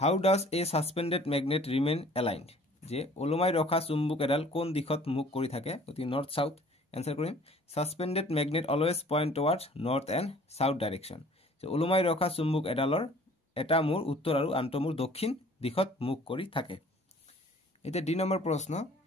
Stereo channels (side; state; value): both; normal; correlation 0.52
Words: does a suspended magnet remain aligned যে ওলমাই ৰখা চুম্বক এডাল কোন দিশত মুখ কৰি থাকে অতি নৰ্থ সাউথ এনসাৰ কৰিম suspended magnet always point towards north and south direction যে ওলমাই ৰখা চুম্বক এডালৰ এটা মূৰ উত্তৰ আৰু আনটো মূৰ দক্ষিণ দিশত মুখ কৰি থাকে এটা ডি নম্বৰ প্ৰশ্ন